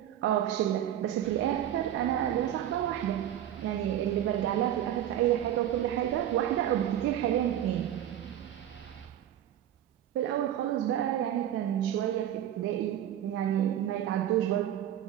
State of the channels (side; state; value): left; quieter; 11.2 dB